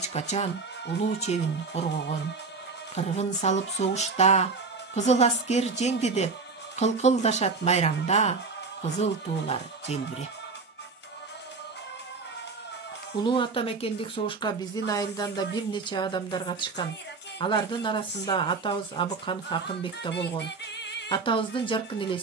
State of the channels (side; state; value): left; quieter; 4.3 dB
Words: качан улуу чебин коргогон. Кыргын салып согушта, кызыл аскер жеңди деп, кылкылдашат майрамда, кызыл туулар желбиреп. Улуу атамекендик согушка биздин айылдан да бир нече адамдар катышкан. Алардын арасында атабыз Абыканов Акынбек да болгон. Атабыздын жаркын